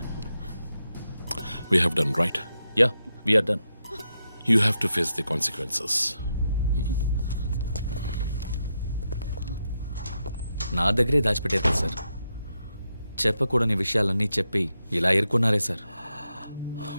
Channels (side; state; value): both; inverted; correlation -0.85